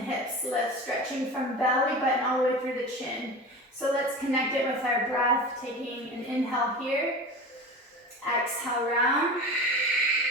lift, stretching from belly button all the way through the chin. So let's connect it with our breath, taking an inhale here, exhale round,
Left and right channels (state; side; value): normal; both; correlation 0.31